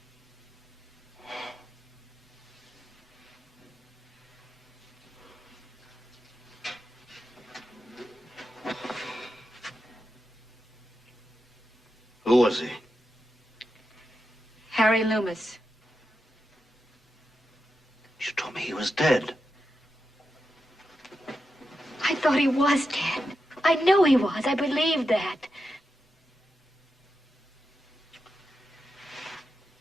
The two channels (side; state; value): both; normal; correlation 0.88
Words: Who was he? Harry Loomis. You told me he was dead. I thought he was dead. I knew he was. I believed that.